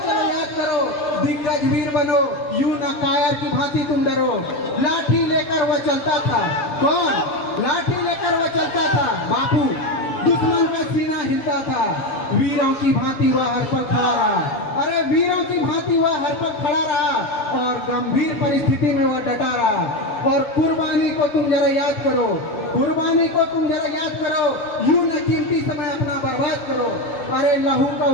चलो याद करो। दिग्गज वीर बनो, यूं न कायर की भांति तुम डरो। लाठी लेकर वह चलता था, कौन? लाठी लेकर वह चलता था बापू। दुश्मन का सीना हिलता था, वीरों की भांति वह हर पल खड़ा रहा। अरे वीरों की भांति वह हर पल खड़ा रहा और गंभीर परिस्थिति में वह डटा रहा। और कुर्बानी को तुम जरा याद करो, कुर्बानी को तुम जरा याद करो। यूं न कीमती समय अपना बर्बाद करो। अरे लहू का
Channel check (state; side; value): late; right; 6.7 ms